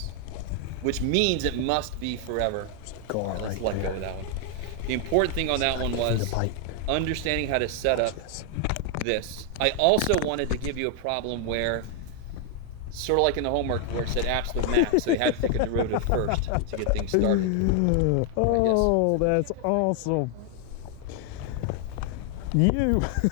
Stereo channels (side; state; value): both; different; correlation 0.00